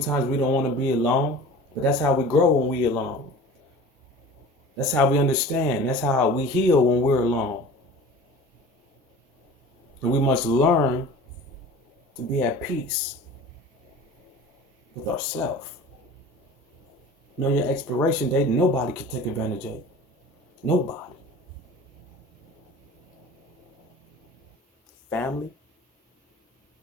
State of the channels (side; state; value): both; normal; correlation 0.40